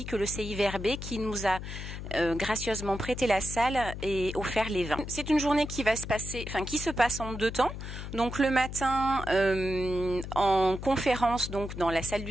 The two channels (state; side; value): noise; left; hum, 8 dB below the sound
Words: que le CIVRB qui nous a gracieusement prêté la salle et offert les vins. C'est une journée qui va se passer, qui se passe en deux temps. Donc le matin en conférence donc dans la salle